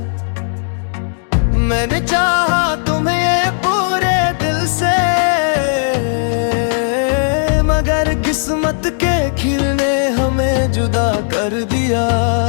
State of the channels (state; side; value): silent; right; digital silence